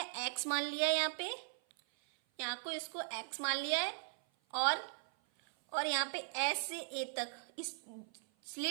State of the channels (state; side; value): silent; left; 52 dB below the other